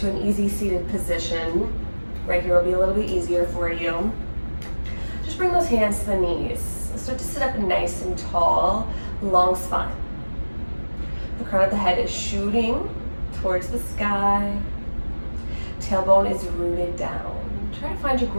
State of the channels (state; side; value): inverted; both; correlation -1.00